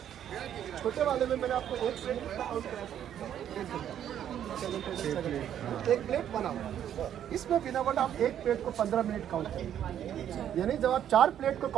छोटे वाले में मैंने आपको एक प्लेट बना हुआ, इसमें बिना वर्ड आप एक प्लेट को 15 मिनट काउंट करेंगे, यानी जब आप 4 प्लेट को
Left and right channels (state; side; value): quieter; left; 10.1 dB